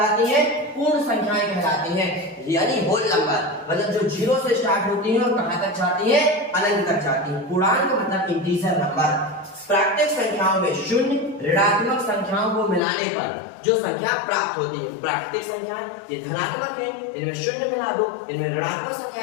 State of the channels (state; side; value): drops out; right; at 12.8 s